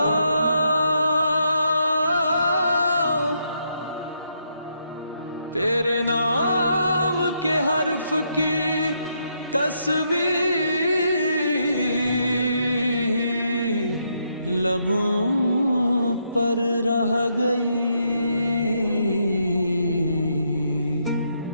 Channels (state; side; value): inverted; both; correlation -0.77